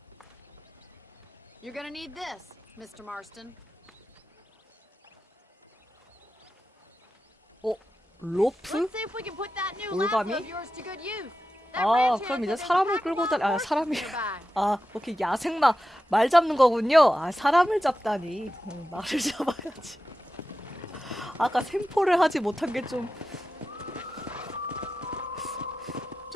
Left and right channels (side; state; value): both; normal; correlation 0.92